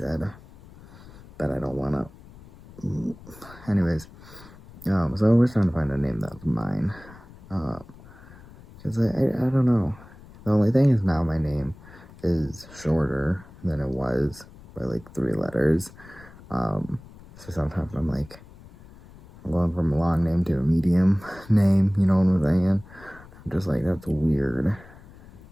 but I don't want to. Anyways, so we're trying to find a name that's mine. Because I don't know. The only thing is now my name is shorter than it was by like 3 letters. So sometimes I'm like, I'm going from a long name to a medium name, you know what I'm saying? I'm just like, that's weird.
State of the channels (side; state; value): left; noise; rumble, 21 dB below the sound